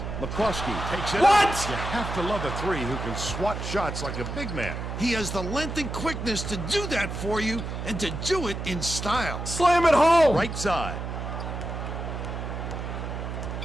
McCroskey takes it What? up. You have to love a three who can swat shots like a big man. He has the length and quickness to do that for you and to do it in style. Slam it home! Right side.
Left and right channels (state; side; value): noise; right; hum, 5 dB below the sound